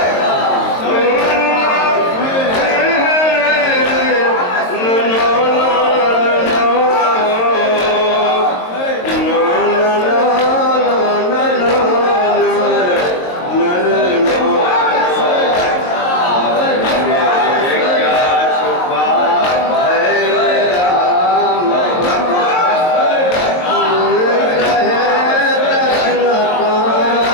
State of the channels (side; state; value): right; late; 22 ms